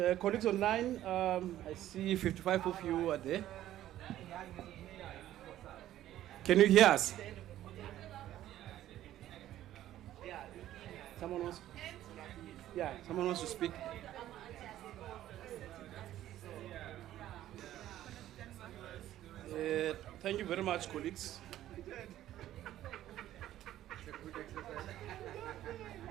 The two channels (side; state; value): left; quieter; 13.1 dB